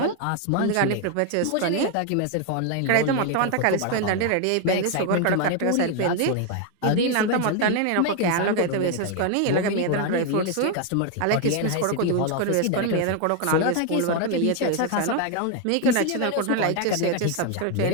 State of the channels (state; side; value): different; both; correlation 0.01